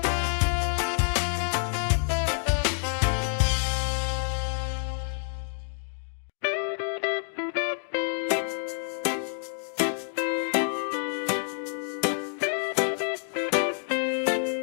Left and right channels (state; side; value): silent; right; digital silence